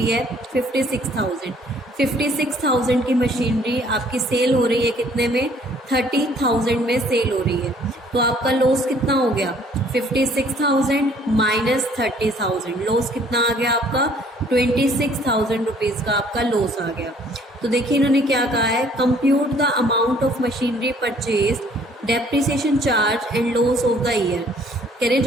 है 56,000। 56,000 की मशीनरी आपकी सेल हो रही है कितने में, 30,000 में सेल हो रही है। तो आपका लॉस कितना हो गया, 56,000 माइनस 30,000, लॉस कितना आ गया आपका 26,000 रुपीज़ का आपका लॉस आ गया। तो देखिए इन्होंने क्या कहा है, compute the amount of machinery purchase, depreciation charge and loss of the year. कह रहे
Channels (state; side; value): normal; both; correlation 0.59